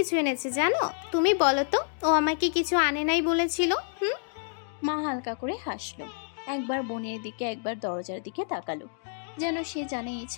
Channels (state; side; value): silent; right; digital silence